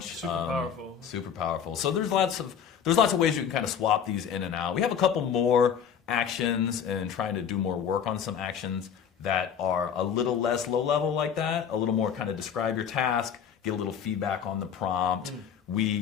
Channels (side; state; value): right; quieter; 7.9 dB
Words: Super powerful. So there's lots of ways you can kind of swap these in and out. We have a couple more actions and trying to do more work on some actions that are a little less low level like that, a little more kind of describe your task, get a little feedback on the prompt.